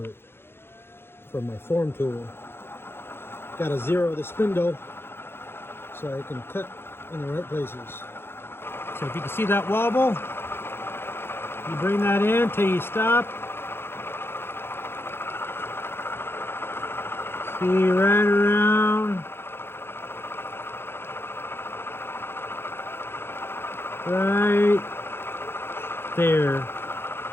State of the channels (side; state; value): right; late; 0.11 ms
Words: from my form tool. Got to zero the spindle so I can cut in the right places. So if you can see that wobble, you bring that in till you stop. See right around. Right there